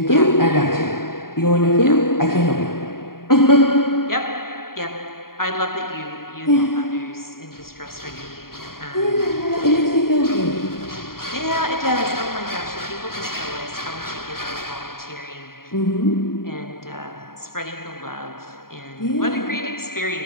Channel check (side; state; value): right; late; 0.92 ms